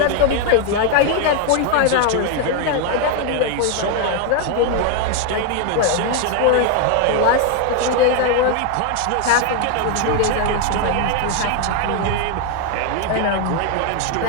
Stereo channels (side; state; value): both; different; correlation 0.01